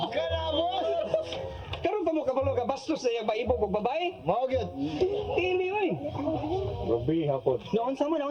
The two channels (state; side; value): identical; both; correlation 1.00